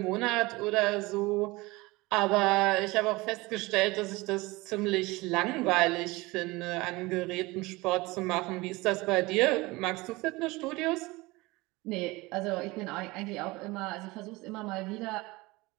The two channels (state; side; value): quieter; left; 22.2 dB